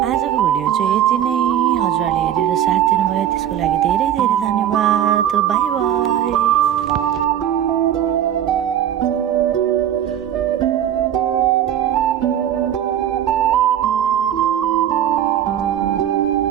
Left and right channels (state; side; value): quieter; left; 10.6 dB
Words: आजको भिडियो चाहिँ यति नै हजुरहरूले हेरेर साथ दिनुभयो त्यसको लागि धेरै धेरै धन्यवाद बाई बाई